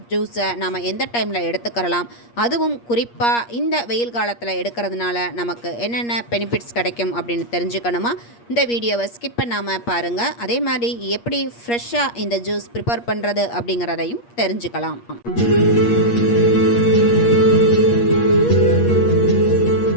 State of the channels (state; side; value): late; right; 8.5 ms